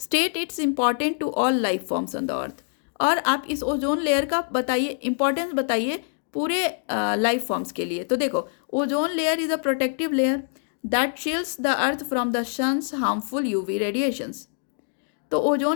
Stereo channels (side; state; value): right; silent; digital silence